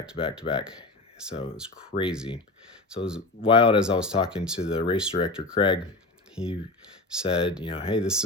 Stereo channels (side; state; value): right; quieter; 3.0 dB